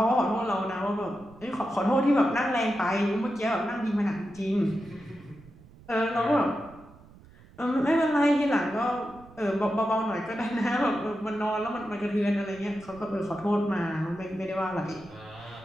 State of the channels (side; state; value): right; noise; rumble, 23 dB below the sound